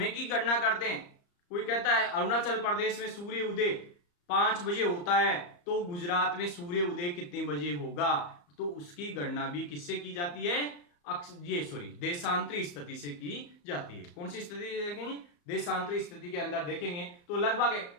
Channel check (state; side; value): late; right; 34 ms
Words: की गणना करते हैं, कोई कहता है अरुणाचल प्रदेश में सूर्य उदय 5 बजे होता है, तो गुजरात में सूर्य उदय कितने बजे होगा, तो उसकी गणना भी किससे की जाती है, देशांतरी स्थिति से की जाती है। कौन सी स्थिति देखेंगे, देशांतरी स्थिति के अंदर देखेंगे तो लगभग